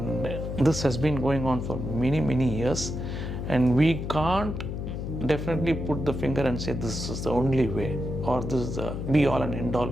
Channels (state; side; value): noise; left; hum, 5 dB below the sound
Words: this has been going on for many, many years. And we can't definitely put the finger and say this is the only way or this is the be all and end all